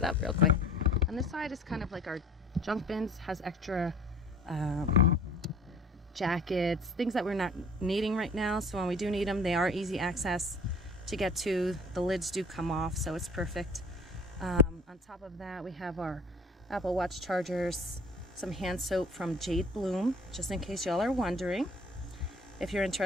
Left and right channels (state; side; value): normal; both; correlation 0.48